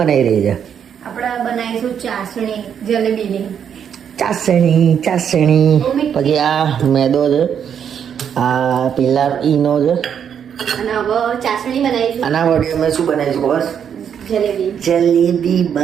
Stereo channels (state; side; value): quieter; left; 8.2 dB